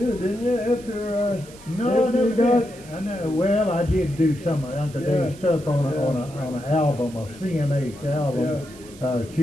didn't you? After No, after no, you got. I know. Well, I did do some of Uncle Dave's stuff on an album, a CMH album,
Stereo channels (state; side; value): noise; right; hiss, 21 dB below the sound